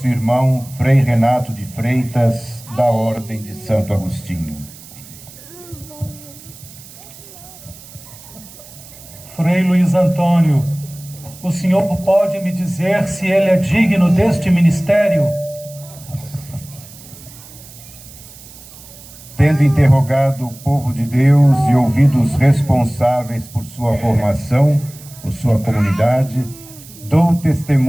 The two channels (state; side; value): noise; right; hiss, 19 dB below the sound